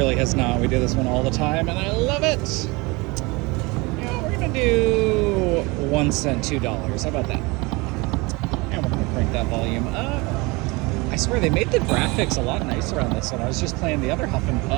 has not. We do this one all the time, and I love it. Yeah, we're gonna do 1 cent, $2. How about that? And we're gonna crank that volume up. I swear they made the graphics a lot nicer on this one. I was just playing the other Huff and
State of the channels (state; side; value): quieter; left; 25.1 dB